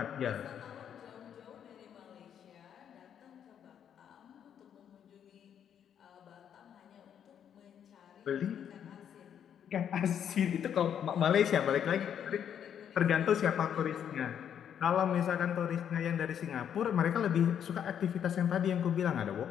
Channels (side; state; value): right; quieter; 8.9 dB